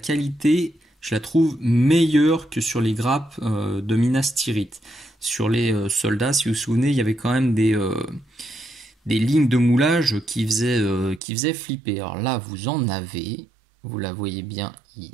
je la trouve meilleure que sur les grappes de Minas Tirith. Sur les soldats, si vous vous souvenez, il y avait quand même des lignes de moulage qui faisaient flipper. Alors là, vous en avez, vous la voyez bien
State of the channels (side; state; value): left; drops out; at 11.2 s